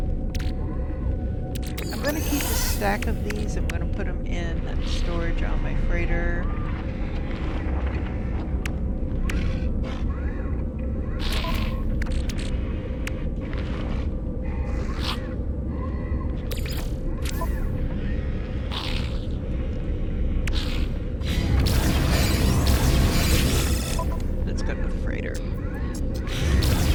I'm going to keep a stack of these. I'm going to put them in storage on my freighter. Let's go to the freighter.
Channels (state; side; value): identical; both; correlation 1.00